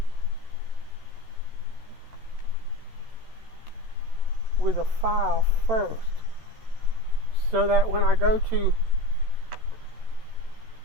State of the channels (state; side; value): late; left; 13 ms